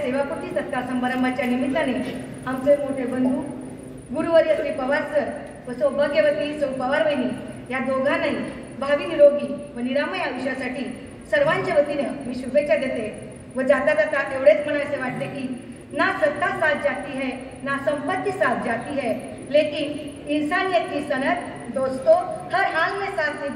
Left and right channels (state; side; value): identical; both; correlation 1.00